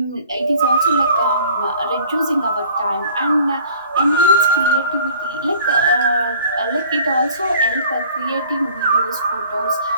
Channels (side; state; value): both; inverted; correlation -0.51